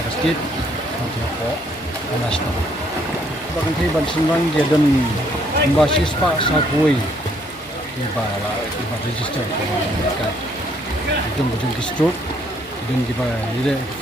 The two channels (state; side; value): normal; both; correlation 0.67